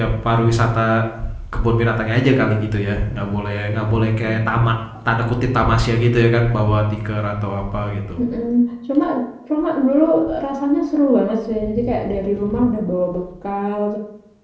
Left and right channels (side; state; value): both; identical; correlation 1.00